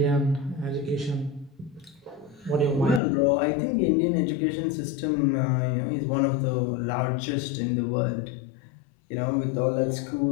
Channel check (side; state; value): right; drops out; at 3.0 s